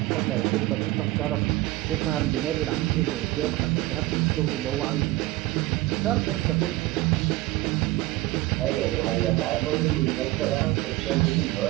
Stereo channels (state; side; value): quieter; left; 18.3 dB